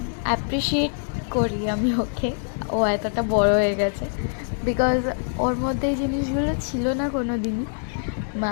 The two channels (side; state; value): right; silent; 62 dB below the other